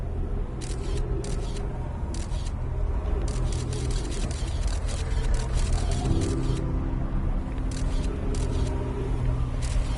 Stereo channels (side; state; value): both; identical; correlation 1.00